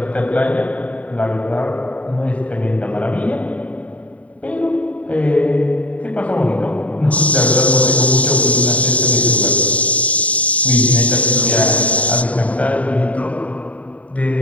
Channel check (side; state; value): right; late; 0.067 ms